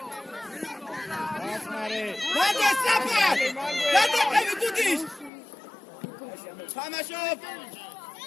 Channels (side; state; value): right; drops out; at 5.3 s